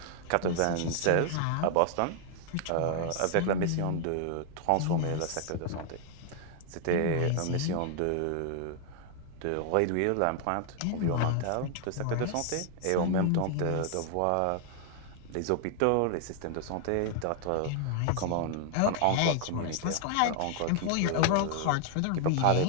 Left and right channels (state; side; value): different; both; correlation 0.00